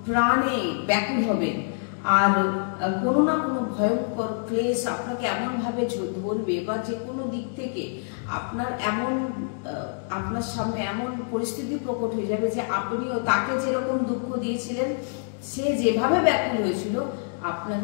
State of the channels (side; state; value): right; silent; 61 dB below the other